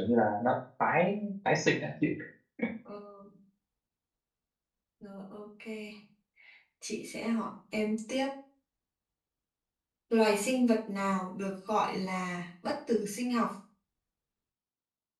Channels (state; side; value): identical; both; correlation 1.00